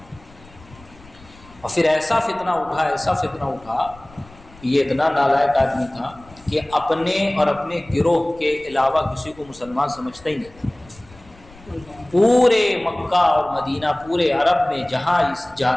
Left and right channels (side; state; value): left; noise; rumble, 24 dB below the sound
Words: اور پھر ایسا فتنہ اٹھا، یہ اتنا نالائق آدمی تھا کہ اپنے اور اپنے گروہ کے علاوہ کسی کو مسلمان سمجھتا ہی نہیں تھا۔ پورے مکہ اور مدینہ، پورے عرب میں جہاں